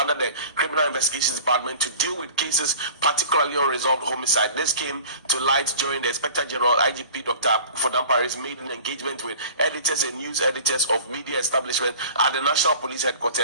the Criminal Investigations Department to deal with cases, particularly unresolved homicide. This came to light during the Inspector General IGP Dr. Akuffo Dampare's maiden engagement with editors and news editors of media establishment at the National Police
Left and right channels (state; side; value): inverted; both; correlation -0.43